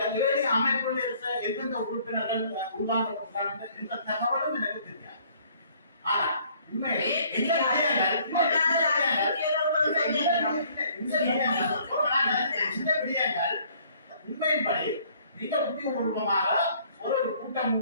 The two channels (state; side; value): inverted; both; correlation -0.60